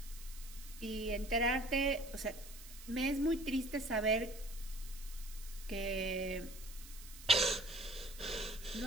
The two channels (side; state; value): right; noise; hiss, 16 dB below the sound